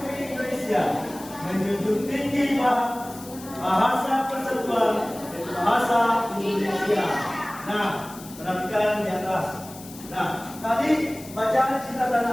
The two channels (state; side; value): noise; left; hiss, 17 dB below the sound